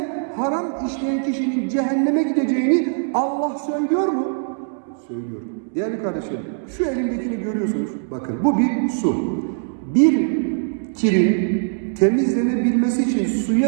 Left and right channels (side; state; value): left; silent; 65 dB below the other